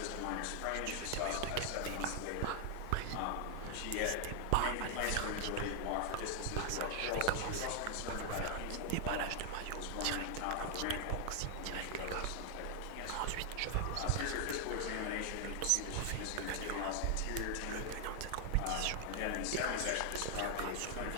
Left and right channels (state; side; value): different; both; correlation 0.00